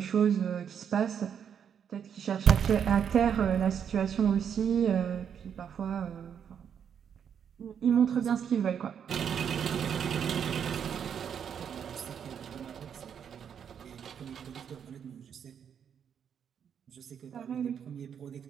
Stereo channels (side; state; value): left; quieter; 8.0 dB